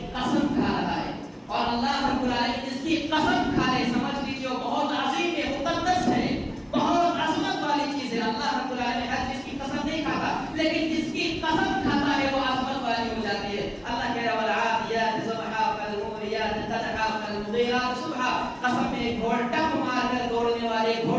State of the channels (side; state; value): both; identical; correlation 1.00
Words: قسم کھا رہا ہے. اور اللہ رب العالمین جس کی قسم کھا لے سمجھ لیجیے بہت عظیم ہے, مقدس ہے, بہت عظمت والی چیز ہے. اللہ رب العالمین ہر چیز کی قسم نہیں کھاتا, لیکن جس کی قسم کھاتا ہے وہ عظمت والی ہو جاتی ہے. اللہ کہہ رہا ہے والعادیات ضبحا فالموریات قدحا فالمغیرات صبحا. قسم ہے گھوڑا ٹپ مار کر دوڑنے والے